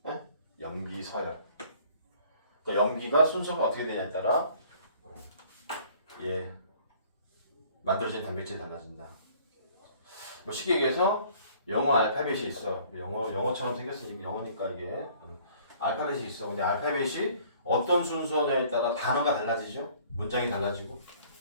네? 염기서열. 그러니까 염기가 순서가 어떻게 되냐에 따라 만들어진 단백질이 달라진다. 뭐 쉽게 얘기해서 영어 알파벳이 있어. 영어처럼 생겼으니까 영어니까 이게 알파벳이 있어. 근데 알파벳이 어떤 순서냐에 따라 단어가 달라지죠. 문장이 달라지고.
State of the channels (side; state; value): both; inverted; correlation -0.56